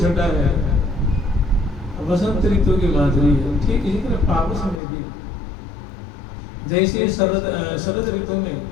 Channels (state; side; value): drops out; right; at 4.8 s